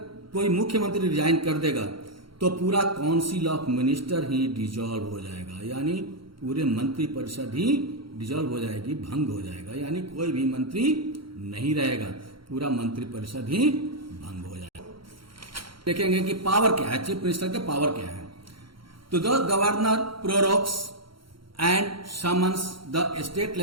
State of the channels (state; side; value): late; left; 0.73 ms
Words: कोई मुख्यमंत्री रिजाइन कर देगा, तो पूरा council of minister he dissolve हो जाएगा, यानी पूरे मंत्रिपरिषद ही डिसॉल्व हो जाएगी, भंग हो जाएगा, यानी कोई भी मंत्री नहीं रहेगा, पूरा मंत्रिपरिषद ही भंग हो जाएगा। देखेंगे कि पावर क्या है, चीफ मिनिस्टर के पावर क्या है। तो the governor prorogues and summons the state